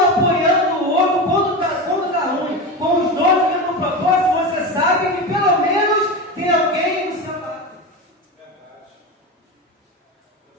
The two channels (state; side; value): normal; both; correlation 0.22